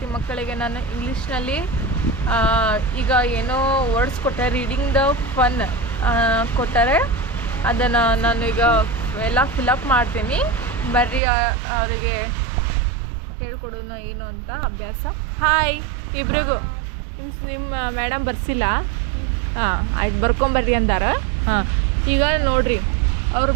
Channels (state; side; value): drops out; left; at 11.2 s